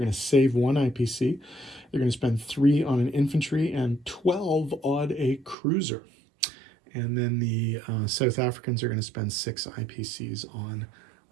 to save 1 IPC. They're going to spend 3 on an infantry and 12 on a cruiser. And then the South Africans are going to spend 6 IPCs on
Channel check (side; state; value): left; drops out; at 5.6 s